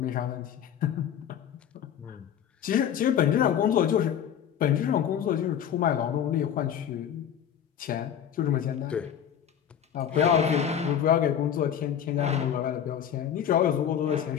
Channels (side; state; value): right; quieter; 9.2 dB